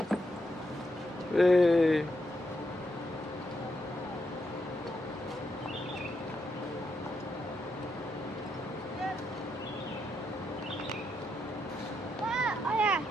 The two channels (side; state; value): both; normal; correlation 0.81